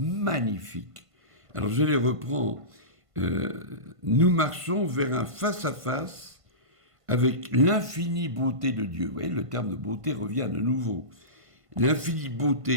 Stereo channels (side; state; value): left; late; 1.5 ms